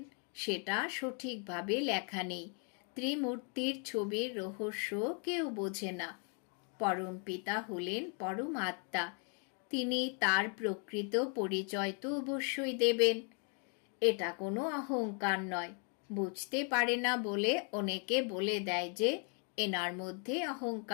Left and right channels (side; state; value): right; quieter; 39.7 dB